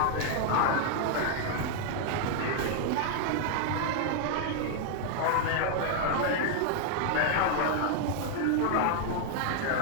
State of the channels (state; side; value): different; both; correlation 0.00